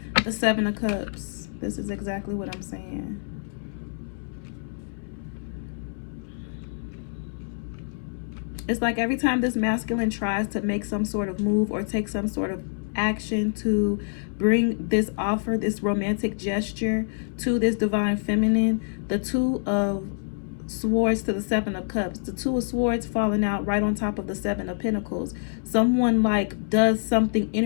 The Seven of Cups. This is exactly what I'm saying. It's like every time this masculine tries to make some sort of move or take some sort of action to bring this offer, this romantic gesture to this divine feminine, the Two of Swords to the Seven of Cups, the Two of Swords falling out right on top of the Seven of Pentacles. Someone like does something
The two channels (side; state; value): right; silent; 61 dB below the other